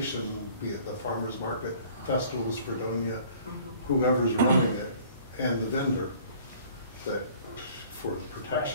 be it the farmer's market, Festivals Fredonia, whoever's running it, and the vendor, that for the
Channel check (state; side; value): inverted; both; correlation -0.52